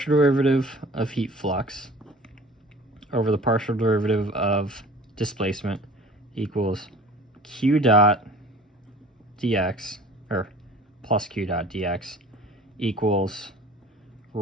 derivative of heat flux over the partial derivative of displacement equals q dot dx, or plus q dot dx, equals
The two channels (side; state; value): both; normal; correlation 0.46